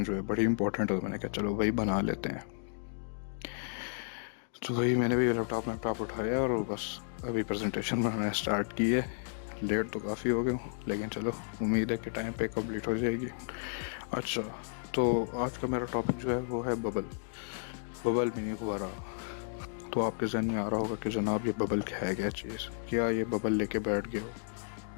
जो है बड़ी इंपॉर्टेंट है। तो मैंने कहा चलो वही बना लेते हैं। तो वही मैंने भी लैपटॉप उठाया और बस अभी प्रेजेंटेशन बनाना स्टार्ट की है। लेट तो काफ़ी हो गया हूँ, लेकिन चलो उम्मीद है कि टाइम पे कंप्लीट हो जाएगी। अच्छा, तो आज का मेरा टॉपिक जो है वो है बबल मीनिंग फुहारा। तो आपके जहन में आ रहा होगा कि जनाब ये बबल है क्या चीज़, क्या ये बबल लेके बैठ गया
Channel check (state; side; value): silent; right; digital silence